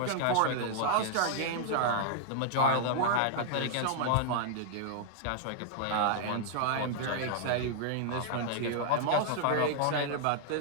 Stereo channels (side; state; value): both; different; correlation -0.01